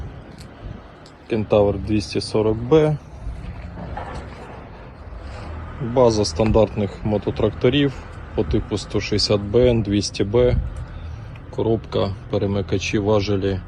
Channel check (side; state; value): both; identical; correlation 1.00